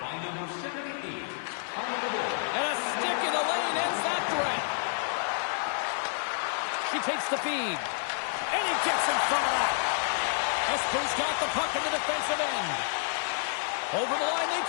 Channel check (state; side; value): silent; right; digital silence